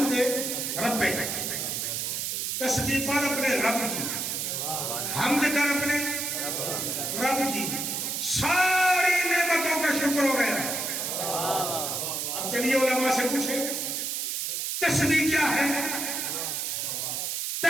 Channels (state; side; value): noise; right; hiss, 2 dB below the sound